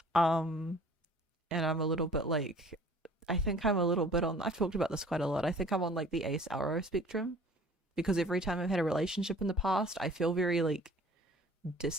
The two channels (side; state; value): both; normal; correlation 0.50